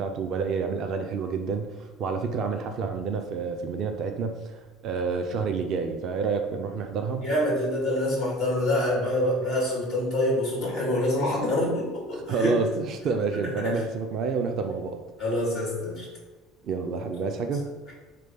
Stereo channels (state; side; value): normal; both; correlation 0.42